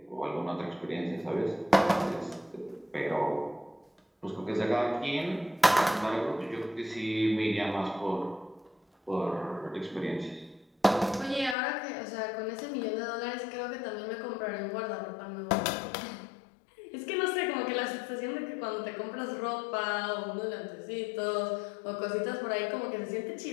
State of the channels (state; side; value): drops out; right; at 11.6 s